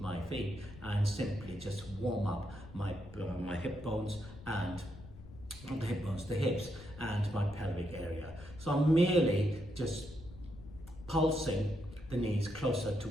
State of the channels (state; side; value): noise; left; rumble, 16 dB below the sound